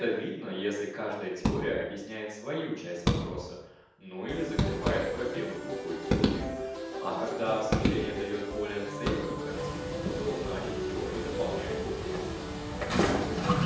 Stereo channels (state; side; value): identical; both; correlation 1.00